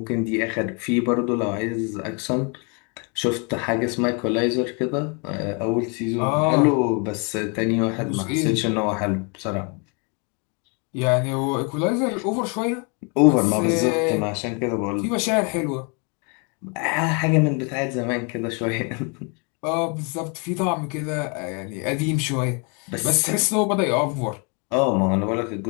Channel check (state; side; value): quieter; right; 34.7 dB